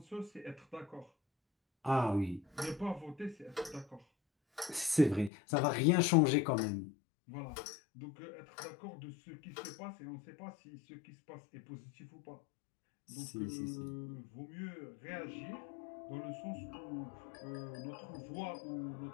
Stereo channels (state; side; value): drops out; right; at 5.3 s